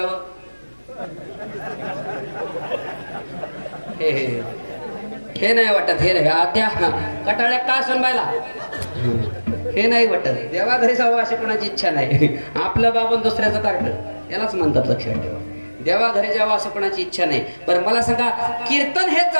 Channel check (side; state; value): both; inverted; correlation -1.00